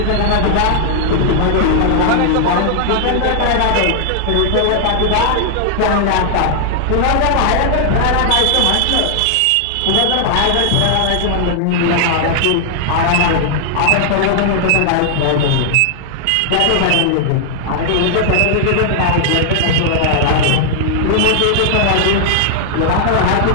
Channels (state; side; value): different; both; correlation -0.01